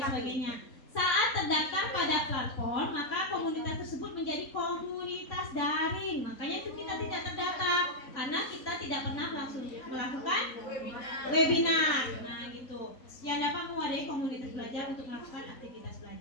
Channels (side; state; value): right; late; 3.6 ms